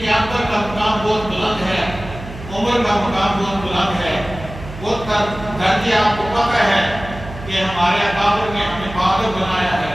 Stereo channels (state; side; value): noise; right; hum, 13 dB below the sound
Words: اکبر کا مقام بہت بلند ہے، عمر کا مقام بہت بلند ہے۔ وہ درجے آپ کو پتہ ہے کہ ہمارے اکابر نے ہمیں بہادر بنایا ہے،